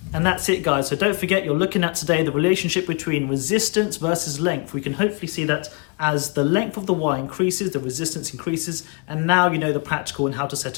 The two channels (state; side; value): quieter; right; 33.6 dB